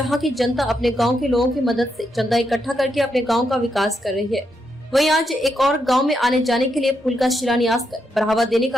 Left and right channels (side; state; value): both; normal; correlation 0.81